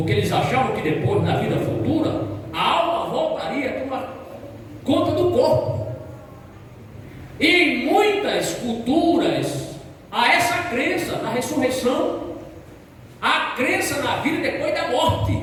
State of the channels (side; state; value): both; identical; correlation 1.00